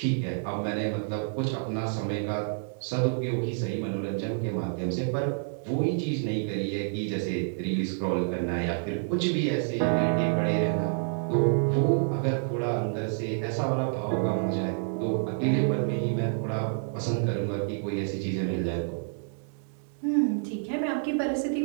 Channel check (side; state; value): left; silent; digital silence